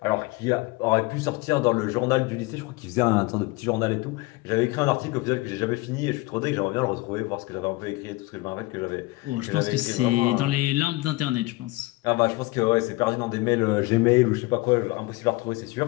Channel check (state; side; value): quieter; right; 21.7 dB